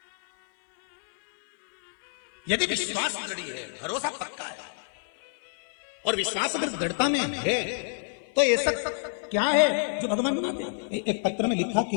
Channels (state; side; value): silent; right; digital silence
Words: यदि विश्वास दृढ़ है, भरोसा पक्का है और विश्वास अगर दृढ़ता में है तो ऐसा क्या है जो भगवान मानते हैं। एक पत्र में लिखा